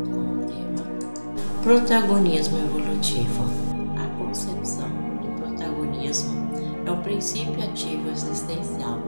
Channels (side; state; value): both; inverted; correlation -1.00